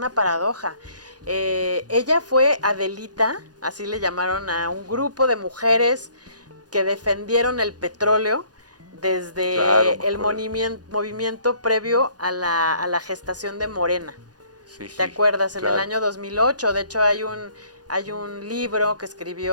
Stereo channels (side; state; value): left; late; 0.69 ms